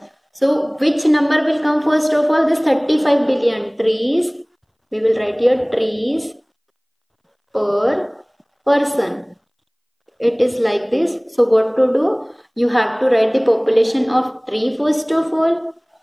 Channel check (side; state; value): both; identical; correlation 1.00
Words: So which number will come first of all? This 35 billion trees. We will write here trees per person. It is like this. So what to do? You have to write the population of tree first of all.